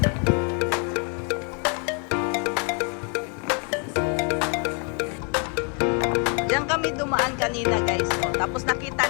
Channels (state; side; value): quieter; right; 35.8 dB